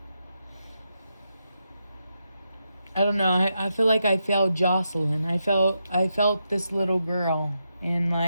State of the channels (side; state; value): both; inverted; correlation -0.85